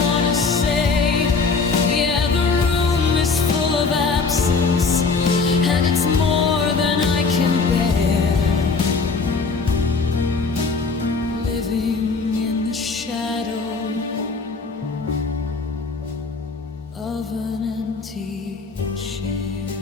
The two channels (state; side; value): quieter; right; 4.6 dB